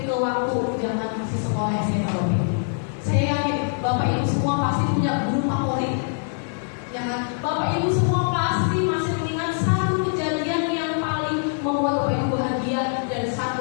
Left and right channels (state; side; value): silent; right; 63 dB below the other